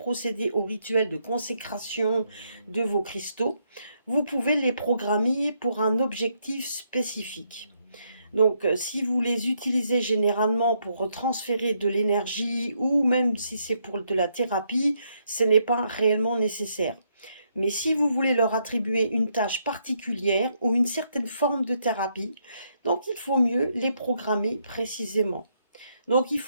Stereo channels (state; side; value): inverted; both; correlation -0.75